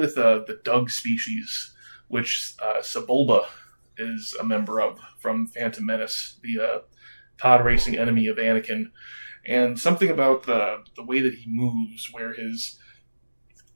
the Dug species, which Sebulba is a member of from Phantom Menace, the pod racing enemy of Anakin. And something about the way that he moves, where his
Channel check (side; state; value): both; inverted; correlation -1.00